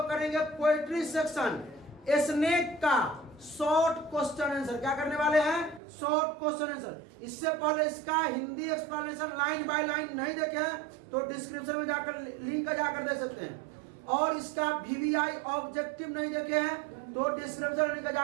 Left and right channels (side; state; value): left; drops out; at 5.8 s